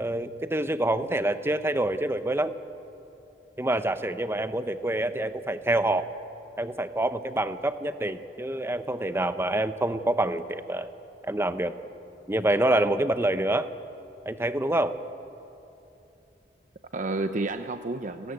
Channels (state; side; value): normal; both; correlation 0.72